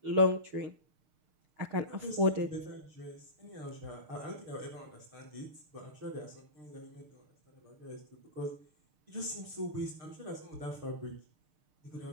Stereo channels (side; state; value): left; late; 6.6 ms